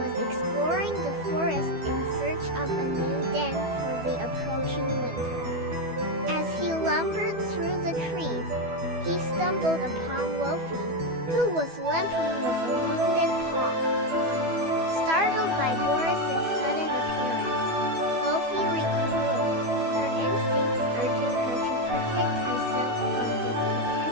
exploring the forest in search of a new den for the approaching winter. As he lumbered through the trees, he stumbled upon Wolfie, who was limping with a wounded paw. Startled by Boris's sudden appearance, Wolfie recoiled, her instincts urging her to protect herself from this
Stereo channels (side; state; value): left; late; 12 ms